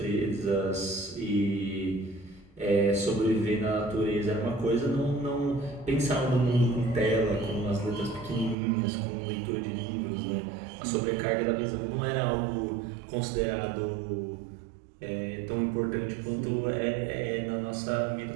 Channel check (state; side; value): drops out; left; at 8.6 s